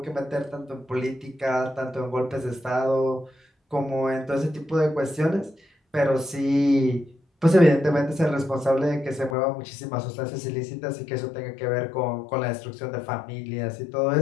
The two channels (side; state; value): right; drops out; at 9.3 s